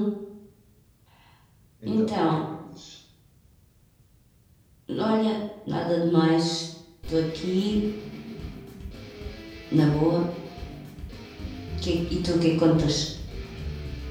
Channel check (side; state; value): both; identical; correlation 1.00